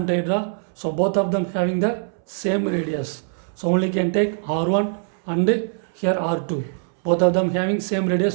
So both of them having the same radius. So only can take R1 and here R2. Both of them having same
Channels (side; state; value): left; silent; 64 dB below the other